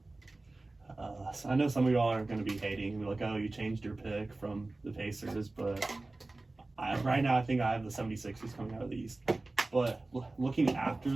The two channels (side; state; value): left; quieter; 3.1 dB